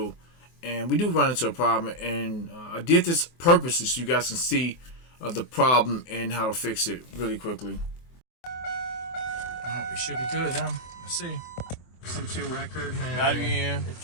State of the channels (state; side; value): late; right; 24 ms